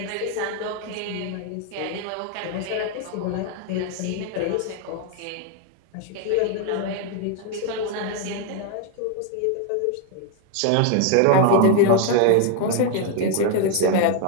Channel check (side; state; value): both; different; correlation 0.01